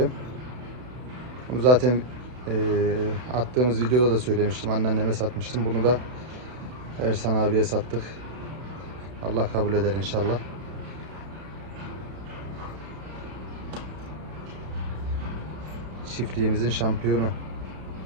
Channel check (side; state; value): left; late; 32 ms